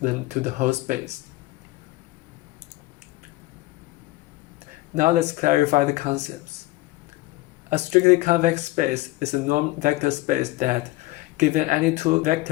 them to the whole space. Now let's clarify the concepts. A strictly convex space is a normed vector space that, given any two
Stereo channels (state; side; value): quieter; right; 18.9 dB